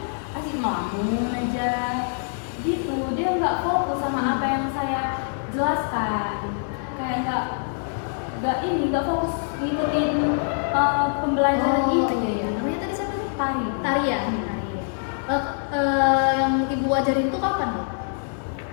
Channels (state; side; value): silent; right; 59 dB below the other